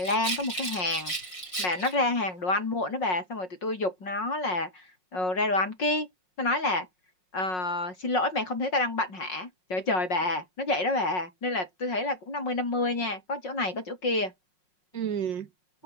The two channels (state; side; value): late; right; 5.5 ms